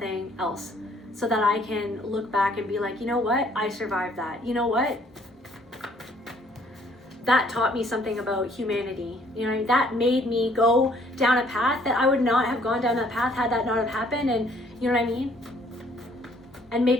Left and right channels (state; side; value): normal; both; correlation 0.62